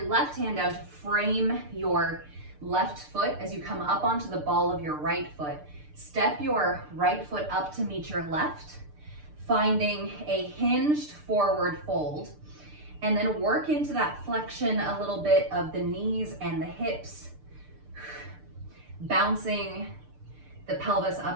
left hand down to frame your left foot as you come up onto the ball of your right foot. Step your right foot up to meet your left, finding a hinged forward fold. And then work into that flexion a little bit of the knees and the hips, bouncing the pelvis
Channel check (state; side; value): late; left; 6.7 ms